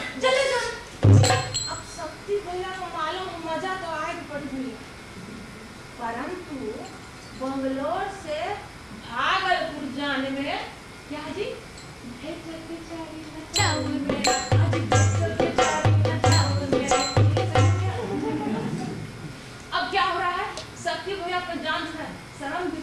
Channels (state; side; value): identical; both; correlation 1.00